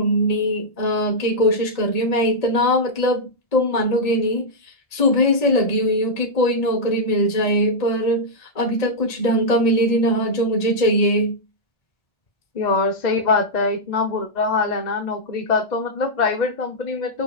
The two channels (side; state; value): right; late; 1.8 ms